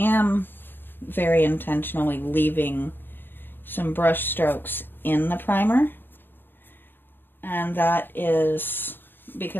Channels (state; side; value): late; right; 0.098 ms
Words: very intentionally leaving some brush strokes in the primer, and that is